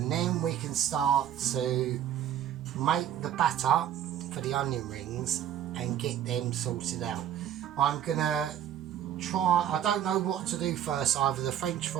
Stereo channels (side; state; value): left; quieter; 10.4 dB